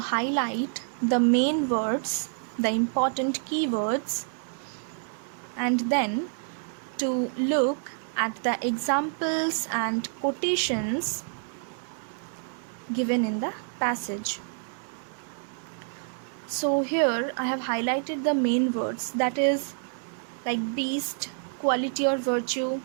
the main words, the important keywords, and then to look at the examples and quotations given in the passage. So here I have highlighted the main words, that is like beast, quality or virtue,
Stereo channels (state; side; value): silent; left; digital silence